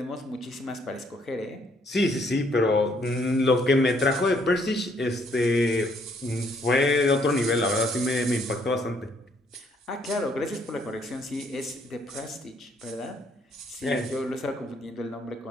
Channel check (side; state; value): both; normal; correlation 0.68